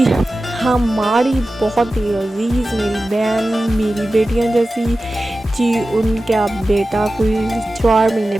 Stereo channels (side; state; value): both; normal; correlation 0.95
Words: हमारी बहुत ही अजीज़ मेरी बहन, मेरी बेटियाँ जैसी जी, उनका बेटा कोई 4 महीने